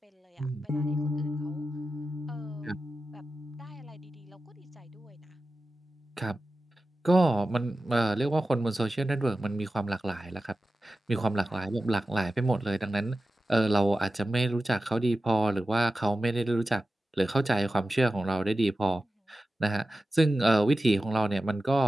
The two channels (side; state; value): both; normal; correlation 0.94